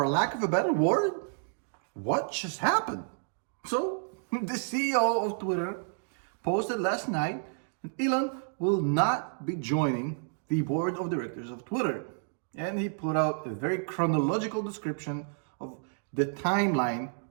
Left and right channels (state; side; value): silent; left; digital silence